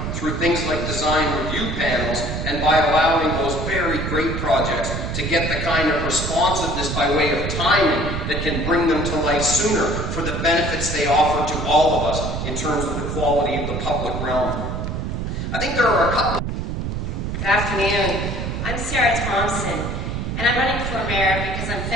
through things like design review panels and by allowing those very great projects to get the kind of responsiveness by way of timing that can bring them to life sooner for the benefits they offer to all of us in terms of the quality of the public realm. I think there are a couple. Good afternoon. I'm Sarah Thompson, and I'm running for mayor because I'm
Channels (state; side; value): noise; right; rumble, 3 dB below the sound